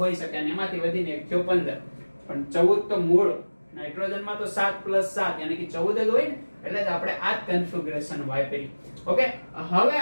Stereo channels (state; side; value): inverted; both; correlation -1.00